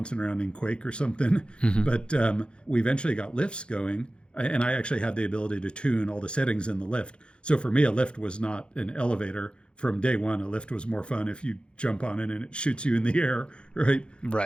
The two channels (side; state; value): right; late; 0.055 ms